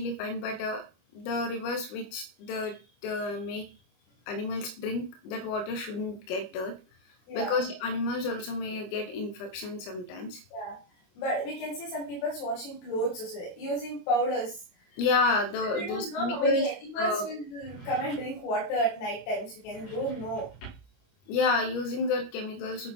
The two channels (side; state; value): right; late; 25 ms